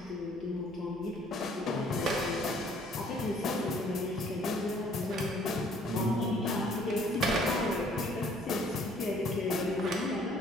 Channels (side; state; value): right; noise; hum, 24 dB below the sound